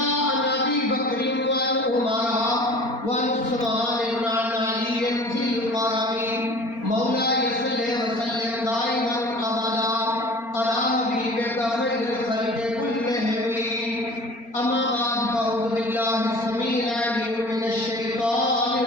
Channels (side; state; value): right; late; 4.3 ms